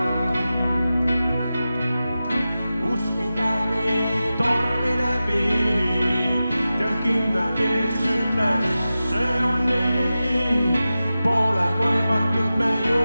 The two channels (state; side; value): inverted; both; correlation -0.94